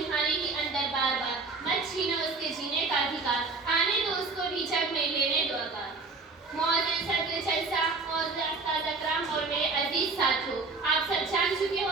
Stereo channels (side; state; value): left; quieter; 4.0 dB